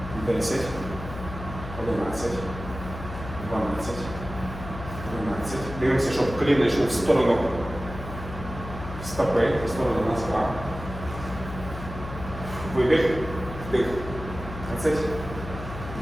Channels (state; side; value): noise; left; hum, 10 dB below the sound